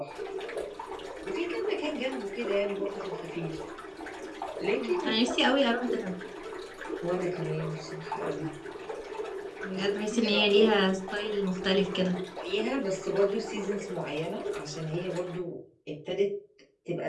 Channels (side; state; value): both; identical; correlation 1.00